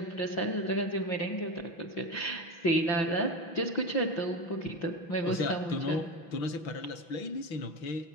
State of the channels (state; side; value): late; right; 6.0 ms